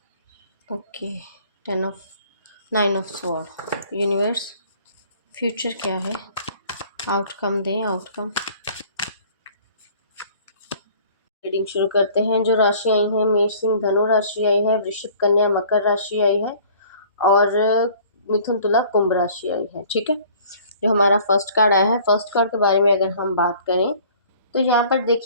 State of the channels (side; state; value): both; inverted; correlation -0.52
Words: Okay, 9 of sword. Universe future क्या है, आउटकम दें आउटकम। रीडिंग शुरू करते हैं। जो राशि आई है, मेष सिंह धनु राशि आई है, वृश्चिक कन्या मकर राशि आई है और मिथुन तुला कुंभ राशि आई है। ठीक है, जो हमारा फर्स्ट कार्ड आया है, फर्स्ट कार्ड के बारे में अगर हम बात करें तो यहाँ पर